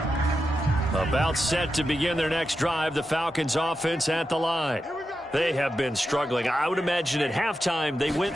About set to begin their next drive, the Falcons offense at the line. They have been struggling. I would imagine at halftime they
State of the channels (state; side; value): normal; both; correlation 0.89